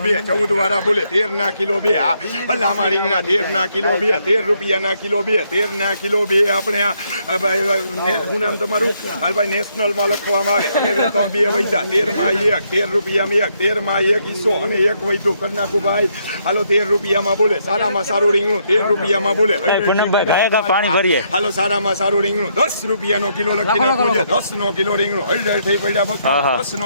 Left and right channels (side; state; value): both; inverted; correlation -0.74